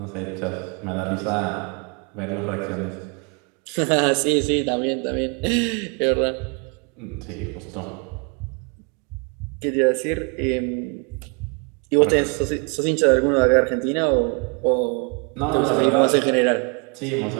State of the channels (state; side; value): quieter; left; 34.0 dB